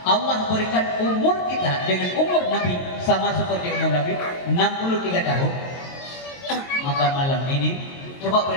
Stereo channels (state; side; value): late; right; 22 ms